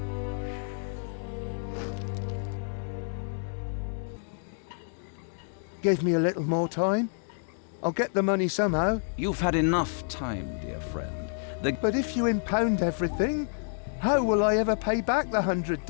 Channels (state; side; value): silent; right; digital silence